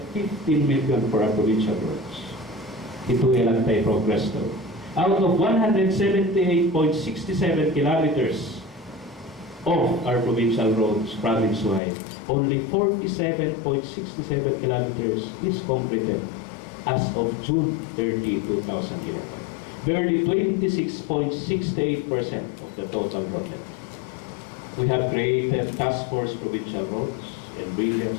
15 million for our provincial roads. Ito ilang tayo progress to. Out of 178.67 kilometers of our provincial roads, province-wide, only 47.67 kilometers is completed as of June 30, 2011. Barely 26.68% of the total project. We have created task force provincial roads and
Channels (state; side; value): drops out; right; at 11.8 s